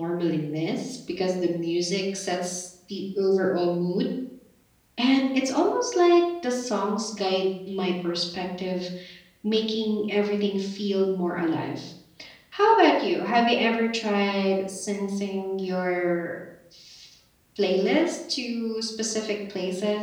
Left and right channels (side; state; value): both; identical; correlation 1.00